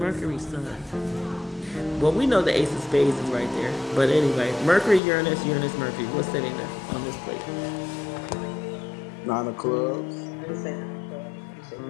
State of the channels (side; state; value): right; drops out; at 5.0 s